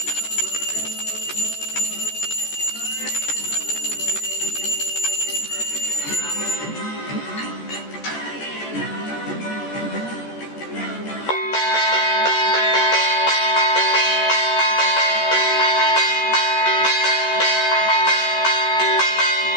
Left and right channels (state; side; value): late; right; 14 ms